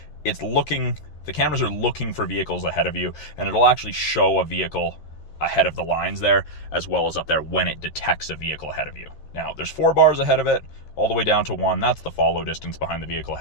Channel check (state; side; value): late; right; 13 ms